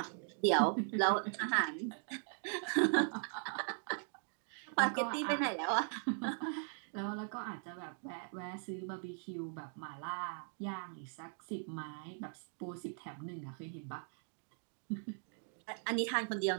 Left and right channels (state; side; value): silent; left; 51 dB below the other